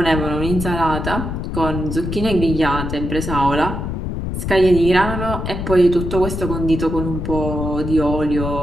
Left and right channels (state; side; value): noise; left; rumble, 4 dB below the sound